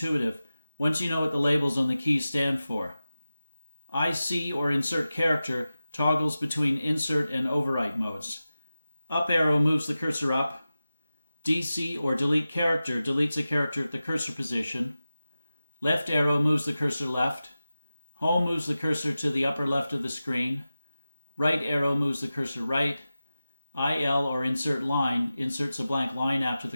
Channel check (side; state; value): both; inverted; correlation -0.94